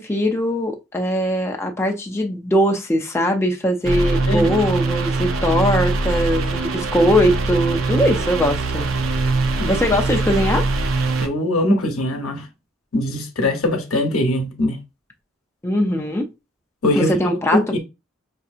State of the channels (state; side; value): normal; both; correlation 0.67